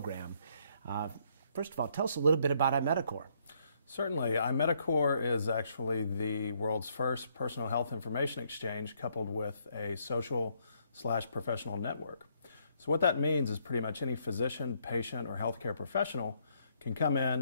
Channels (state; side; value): inverted; both; correlation -0.70